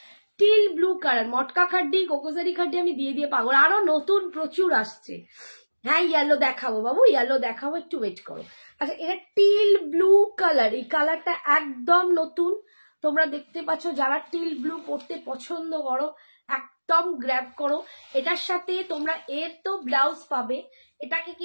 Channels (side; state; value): both; inverted; correlation -1.00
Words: টিল ব্লু কালার, মটকা খাড্ডি, কোকোজারি খাড্ডি আমি দিয়ে দিয়ে পাগল। আরো নতুন প্রচুর আসছে। হ্যাঁ, ইয়েলো দেখাবো বাবু, ইয়েলো দেখাবো, একটু ওয়েট করো। আচ্ছা, এটা টিল ব্লু কালার, এই কালারটা একদম নতুন। তোমরা দেখতে পাচ্ছ, যারা টিল ব্লু পরতে পছন্দ করো একদম গ্র্যাব করো। এটার সাথে তোমরা এর তো ব্লাউজ পাবে। এটাকে